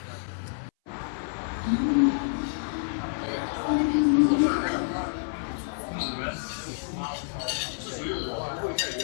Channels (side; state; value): right; silent; 58 dB below the other